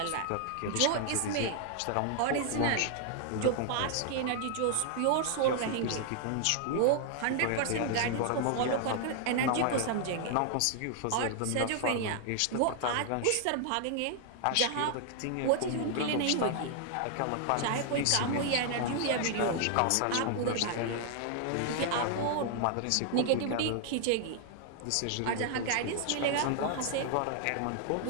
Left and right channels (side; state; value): both; different; correlation 0.00